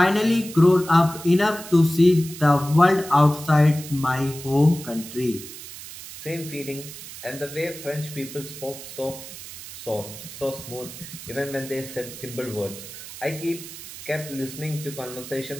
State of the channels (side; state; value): right; noise; hiss, 13 dB below the sound